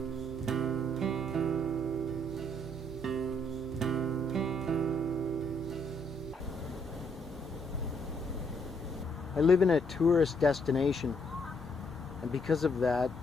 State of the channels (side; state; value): both; normal; correlation 0.71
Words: I live in a tourist destination, and because of that,